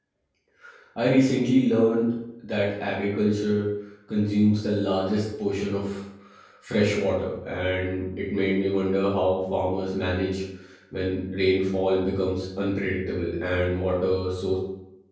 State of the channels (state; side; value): identical; both; correlation 1.00